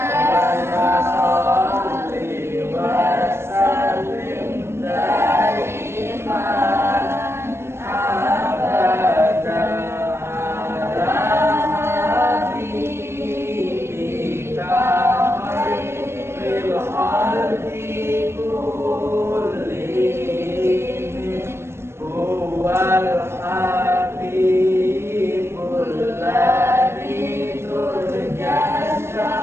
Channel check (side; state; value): left; late; 0.12 ms